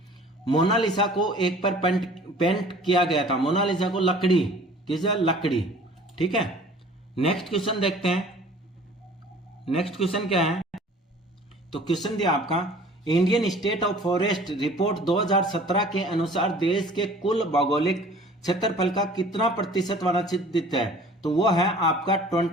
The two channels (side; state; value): both; normal; correlation 0.48